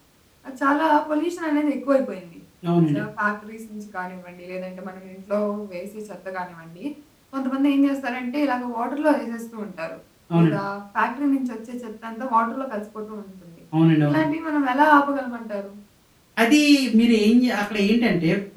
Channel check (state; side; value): identical; both; correlation 1.00